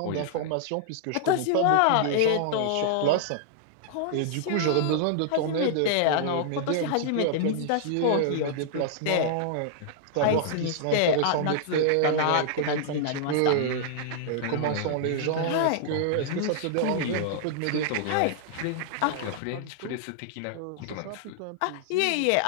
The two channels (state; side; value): different; both; correlation -0.01